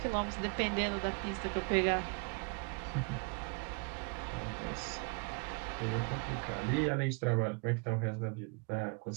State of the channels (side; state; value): left; quieter; 33.9 dB